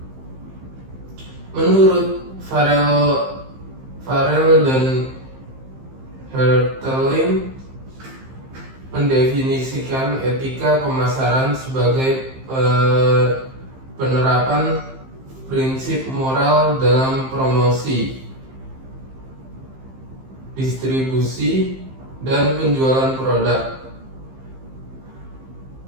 Menurut Farrell dan Hertelin mendefinisikan etika pemasaran sebagai penerapan prinsip moral dalam promosi, distribusi, dan penjualan produk.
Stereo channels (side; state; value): left; late; 15 ms